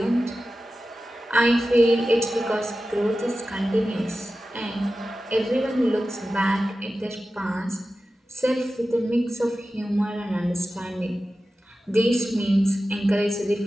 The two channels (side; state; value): both; normal; correlation 0.94